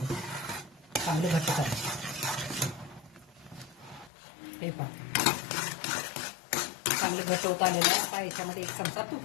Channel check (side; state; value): right; drops out; at 4.1 s